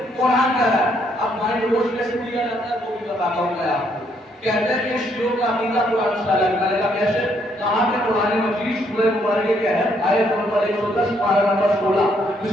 قرآن کہہ رہا ہے. اب مائنڈ واش کیسے دیا جاتا ہے وہ بھی بتاتا ہوں میں آپ کو. کہتے ہیں کہ شیعوں کا عقیدہ قرآن سے الگ ہے۔ میں نے کہا کیسے؟ کہا کہ قرآن مجید سورہ مبارکہ کیا ہے؟ آیت نمبر 110 پارہ نمبر 16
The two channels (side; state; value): both; normal; correlation 0.71